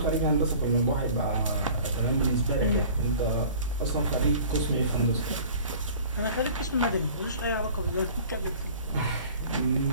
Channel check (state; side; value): inverted; both; correlation -0.46